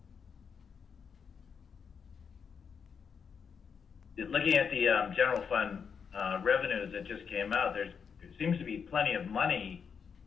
Looking at the general fund revenues that just came out, there seems to be plenty of money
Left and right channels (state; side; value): quieter; right; 6.5 dB